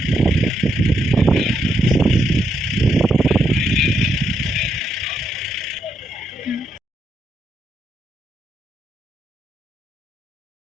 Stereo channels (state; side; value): normal; both; correlation 0.80